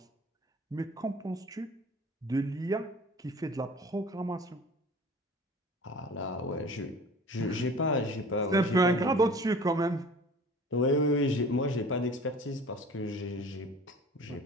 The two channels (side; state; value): both; normal; correlation 0.43